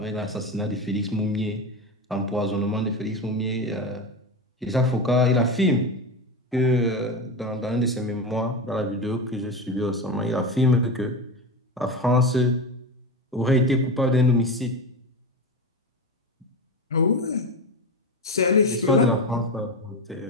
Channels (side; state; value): both; normal; correlation 0.21